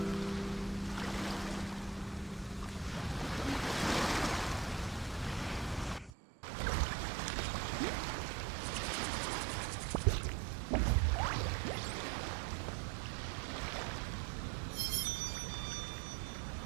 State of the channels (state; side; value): drops out; left; at 6.1 s